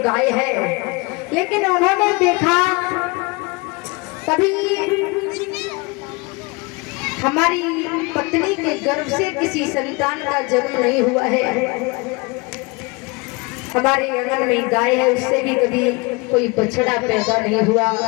गाय है, लेकिन उन्होंने देखा कभी हमारी पत्नी के गर्भ से किसी संतान का जन्म नहीं हुआ है। हमारे आंगन में गाय है, उससे भी कभी कोई बछड़ा पैदा नहीं हुआ।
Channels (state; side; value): quieter; right; 27.3 dB